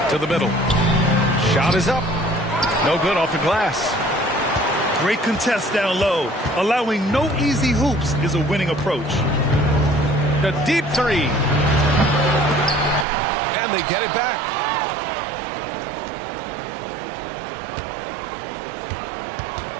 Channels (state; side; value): drops out; left; at 13.1 s